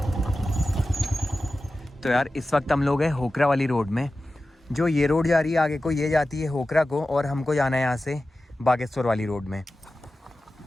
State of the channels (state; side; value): normal; both; correlation 0.94